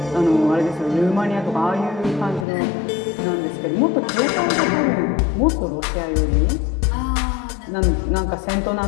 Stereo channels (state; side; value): drops out; right; at 2.5 s